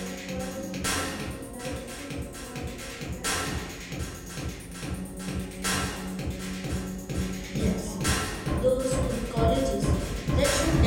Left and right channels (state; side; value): identical; both; correlation 1.00